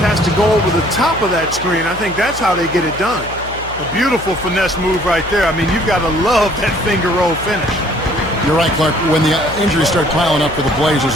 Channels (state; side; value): noise; left; hum, 15 dB below the sound